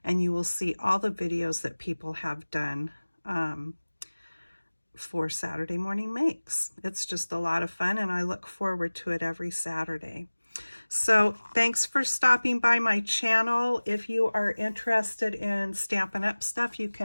and you will see all the videos that people have done for Saturday Morning Makes. It's just a lot of fun, and I look forward to it every Saturday. So thanks for stopping by my channel. If you are interested in Stampin' Up stuff, you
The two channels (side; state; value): both; inverted; correlation -1.00